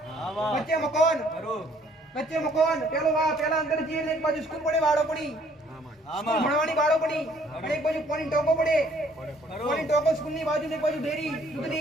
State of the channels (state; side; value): normal; both; correlation 0.61